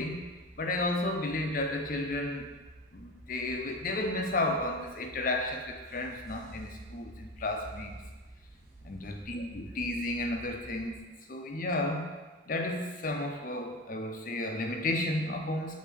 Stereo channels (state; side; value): normal; both; correlation 0.26